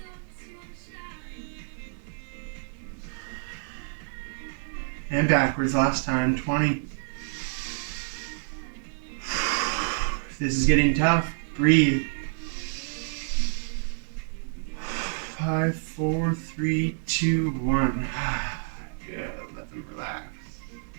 And backwards last time. 20. If this is getting tough, breathe. 5, 4, 3, 2, 1. Good. Let them relax.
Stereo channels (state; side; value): silent; left; digital silence